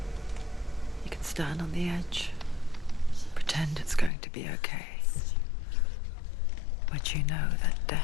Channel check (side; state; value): right; drops out; at 4.1 s